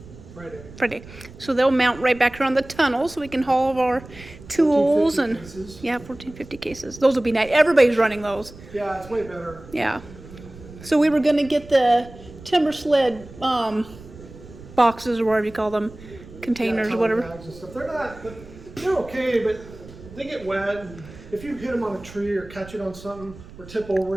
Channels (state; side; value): noise; right; rumble, 18 dB below the sound